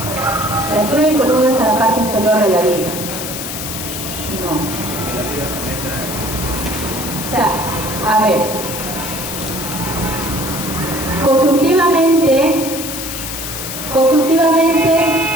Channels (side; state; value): left; noise; hiss, 7 dB below the sound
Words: La altura de columna es a la parte inferior de la viga. No. O sea, a ver.